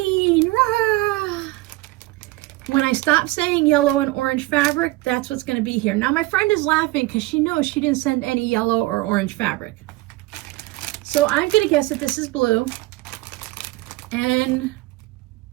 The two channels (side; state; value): left; quieter; 19.9 dB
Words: Rah! When I stop saying yellow and orange fabric, that's what's going to be here. Now my friend is laughing because she knows she didn't send any yellow or orange fabric. So I'm going to guess that this is blue. And